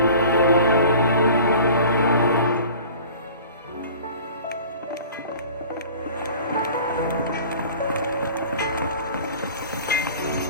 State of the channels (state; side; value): inverted; both; correlation -0.44